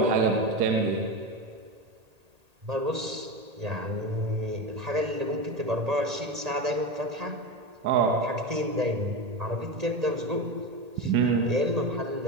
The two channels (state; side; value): late; left; 1.8 ms